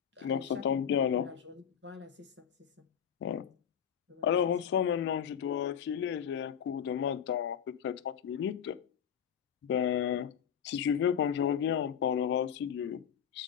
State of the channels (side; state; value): right; quieter; 8.4 dB